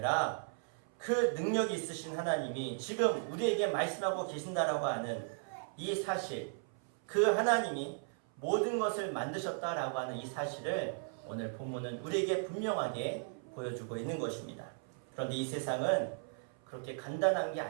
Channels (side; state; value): left; silent; 54 dB below the other